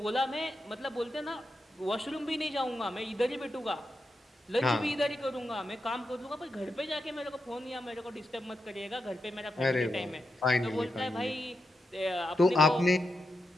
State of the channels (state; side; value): normal; both; correlation 0.86